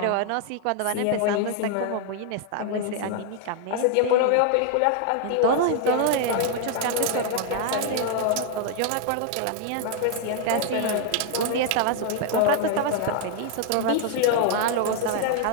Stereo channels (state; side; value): different; both; correlation 0.00